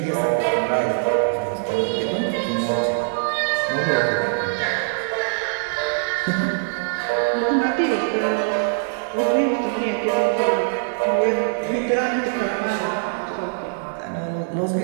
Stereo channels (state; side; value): silent; left; digital silence